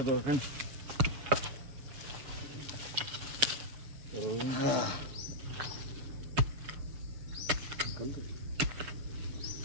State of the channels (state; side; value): late; left; 7.0 ms